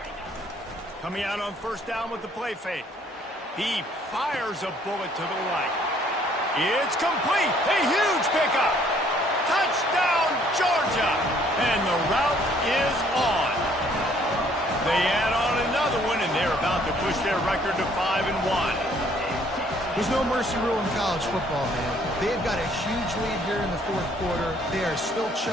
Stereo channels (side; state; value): both; normal; correlation 0.62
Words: Coming out on first down with the play fake. He fires a bullet to the right. It's complete. A huge pickup. Touchdown, Georgia. And the route is on. They add on another one, and they're about to push their record to 5-1. There's no mercy rule in college football, man. They've got a huge lead here in the fourth quarter. They are still